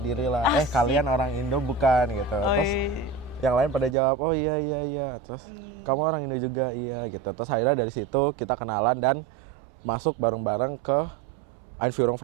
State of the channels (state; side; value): drops out; left; at 4.0 s